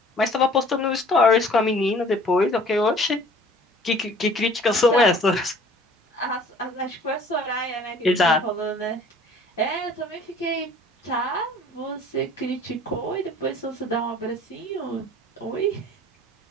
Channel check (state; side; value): normal; both; correlation 0.51